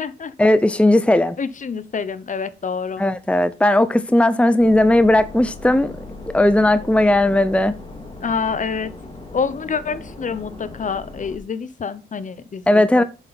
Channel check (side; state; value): both; normal; correlation 0.87